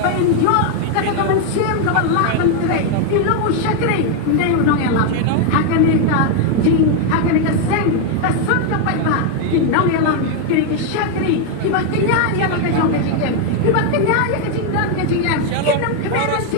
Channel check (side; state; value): both; different; correlation 0.01